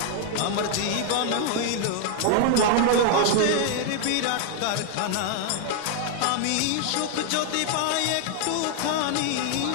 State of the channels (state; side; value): different; both; correlation 0.00